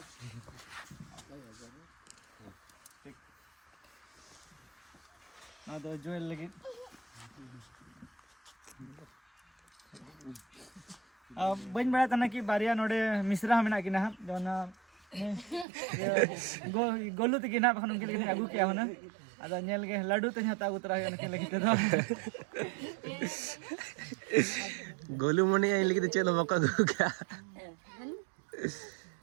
ना तो जोएल लगे बन बड़ा तना कि बारिया नोडे मिश्रा में ना कि ना जोना गोलू तक ना बखन उनके लिए आगू क्या होना अदा नेल के लड्डू ते हता उतरा है उनके लिए तो गोलू मने आई लगी तो चलो मौका दो क्या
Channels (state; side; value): drops out; left; at 15.7 s